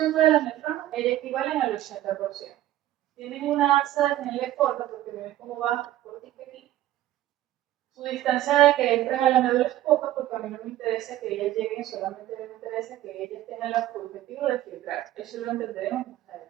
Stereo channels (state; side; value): quieter; left; 14.0 dB